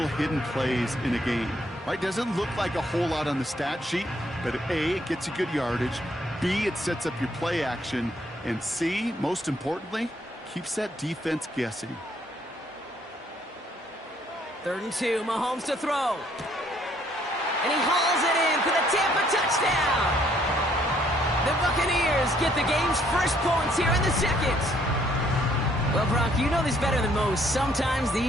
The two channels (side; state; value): both; normal; correlation 0.66